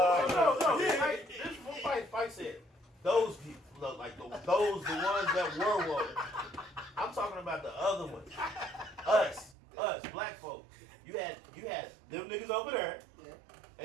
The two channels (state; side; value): drops out; left; at 9.6 s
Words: that. No. This is what Fight said. Those people look like the ones that were woke. I'm talking about the other ones. Us, black folks. You had them niggas over there,